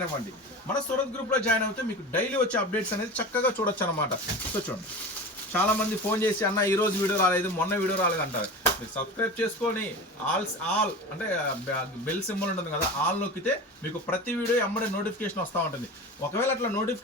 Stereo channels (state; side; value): normal; both; correlation 0.31